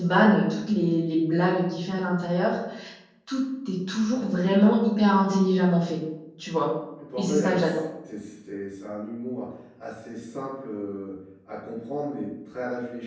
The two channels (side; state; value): both; identical; correlation 1.00